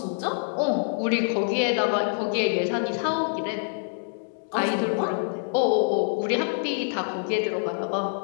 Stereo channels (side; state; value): right; silent; digital silence